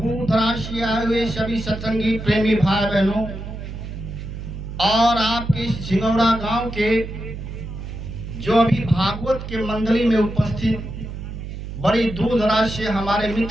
दराज से आए हुए सभी सत्संगी प्रेमी भाई बहनों, और आपके सिंगौड़ा गांव के जो अभी भागवत के मंडली में उपस्थित बड़ी दूर दराज से हमारे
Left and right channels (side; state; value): right; noise; hum, 9 dB below the sound